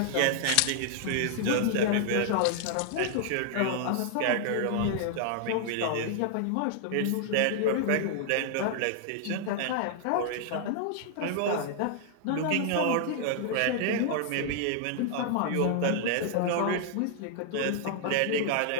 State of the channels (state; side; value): different; both; correlation -0.01